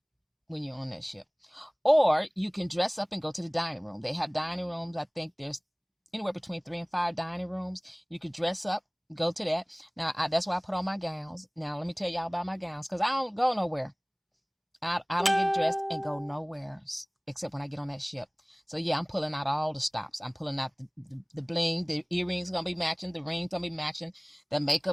you're on that ship. Or you can dress up and go to the dining room. They have dining rooms. I think there's anywhere between 3 and 5 dining rooms. You could dress up, go to that. Now, that's why I put on my gowns. Now, let me tell y'all about my gowns because I don't go nowhere. I don't get dressed and go nowhere except when I get on that ship. So, yeah, I'm pulling out all the stops. I'm pulling out the bling. The earrings going to be matching. The rings going to be matching. The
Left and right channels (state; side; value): identical; both; correlation 1.00